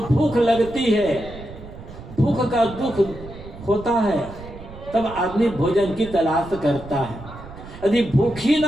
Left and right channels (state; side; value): noise; right; rumble, 15 dB below the sound